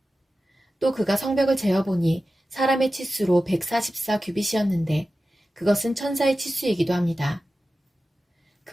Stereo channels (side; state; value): both; normal; correlation 0.94